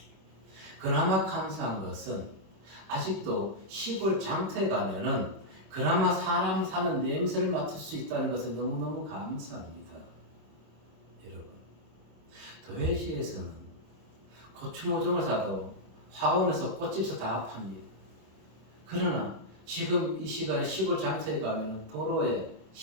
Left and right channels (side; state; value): left; late; 26 ms